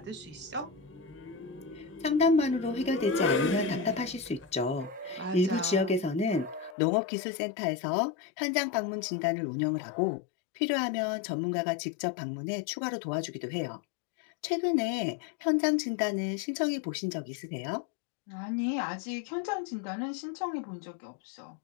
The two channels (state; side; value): drops out; right; at 6.8 s